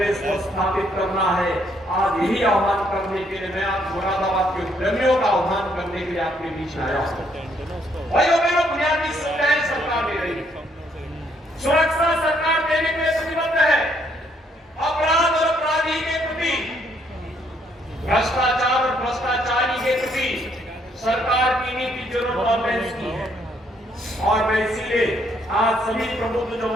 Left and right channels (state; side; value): normal; both; correlation 0.70